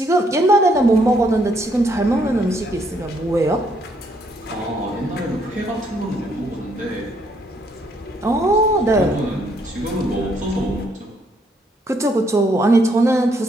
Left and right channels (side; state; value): both; normal; correlation 0.70